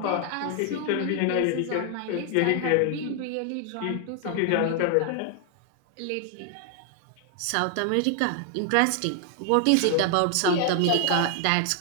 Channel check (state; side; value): different; both; correlation 0.00